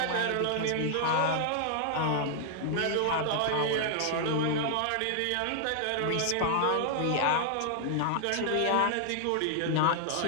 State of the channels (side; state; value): both; different; correlation 0.00